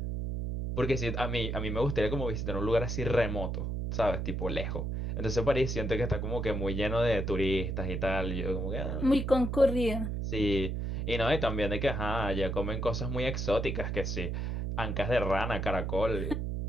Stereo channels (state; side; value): noise; right; hum, 2 dB below the sound